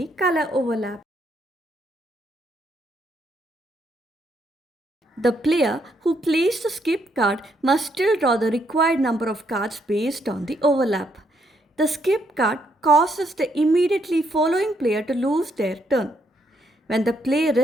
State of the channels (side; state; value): both; normal; correlation 0.74